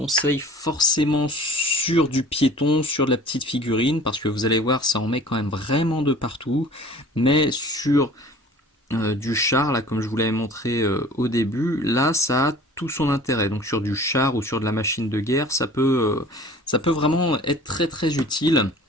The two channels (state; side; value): normal; both; correlation 0.46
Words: forcément sur du piéton, sur de la petite figurine, parce que vous allez voir, ça en met quand même vraiment de partout. Mais sur du char, là, comme je vous l'avais montré au début, là, ça a tout son intérêt. Donc sur du char ou sur de la machine de guerre, ça peut vraiment être très très utile.